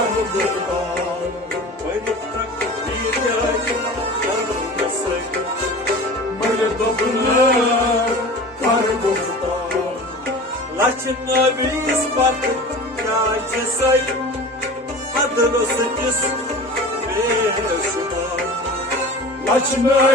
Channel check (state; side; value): normal; both; correlation 0.37